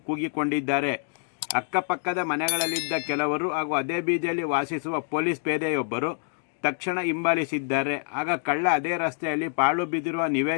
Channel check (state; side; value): silent; right; digital silence